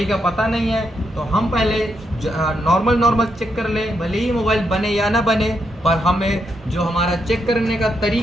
का पता नहीं है, तो हम पहले नॉर्मल चेक कर लें, भले ही मोबाइल बने या ना बने, पर हमें जो हमारा चेक करने का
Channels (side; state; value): both; normal; correlation 0.80